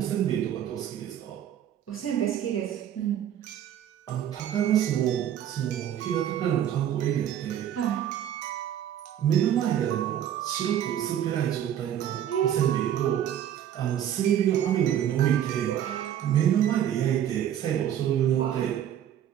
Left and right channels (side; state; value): left; quieter; 10.4 dB